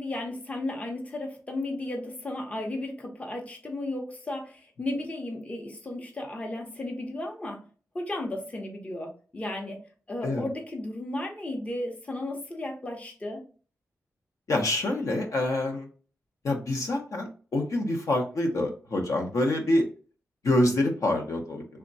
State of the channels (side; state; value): both; normal; correlation 0.81